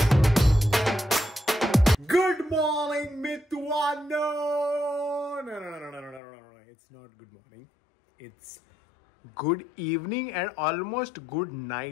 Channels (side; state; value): right; drops out; at 6.2 s